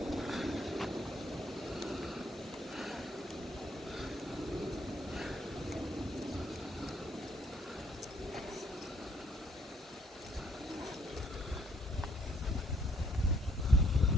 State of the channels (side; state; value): both; normal; correlation 0.66